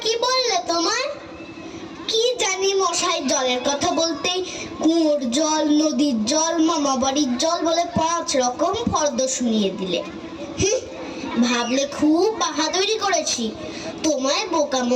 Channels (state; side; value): identical; both; correlation 1.00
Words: কি বললে তোমায়? কি জানি মশাই, জলের কথা বলতেই কুয়োর জল, নদীর জল, মামা বাড়ির জল বলে 5 রকম ফর্দ শুনিয়ে দিলে। ভাবলে খুব বাহাদুরি করেছি। তোমায় বোকা